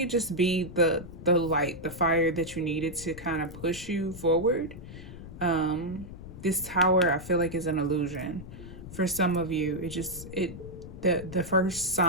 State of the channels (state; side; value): noise; left; rumble, 13 dB below the sound